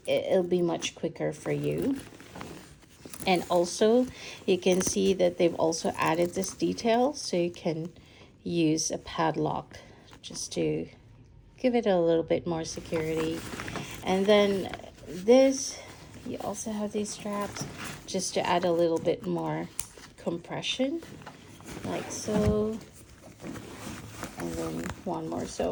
It'll be much quicker for you. And also you can see that they've also added this detail, so you can use a padlock just to give it a little bit more security. And then this, you also have these straps just to add a little bit more compression, like so. And then one more.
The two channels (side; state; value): both; identical; correlation 1.00